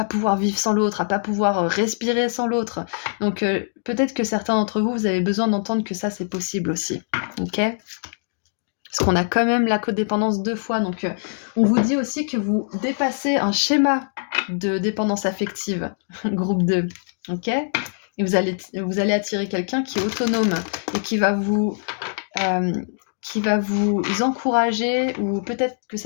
pouvoir vivre sans l'autre, à pas pouvoir respirer sans l'autre. Donc peut-être que certains d'entre vous, vous avez besoin d'entendre que ça, c'est possible aussi. Ok ? Parce qu'on a quand même la codépendance 2 fois. Donc on vous dit aussi que vous dépassez un schéma de dépendance affective, groupe 2. Ok ? Et vous allez attirer quelqu'un qui est autonome et qui va vous encourager, ou peut-être que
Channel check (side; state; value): right; silent; digital silence